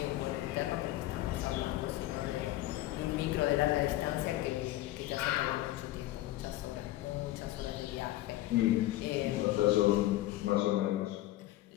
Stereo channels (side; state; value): right; quieter; 15.9 dB